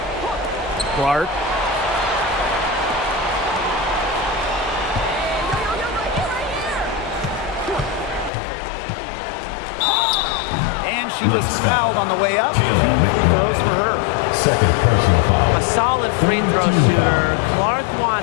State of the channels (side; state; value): right; drops out; at 8.3 s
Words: Clark. And she was fouled on the way up. 2 throws for her. Second personal foul. A solid free throw shooter. Clark